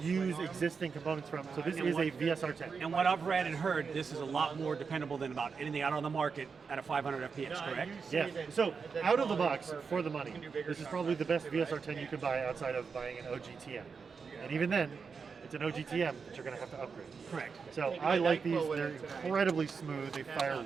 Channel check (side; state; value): left; quieter; 5.5 dB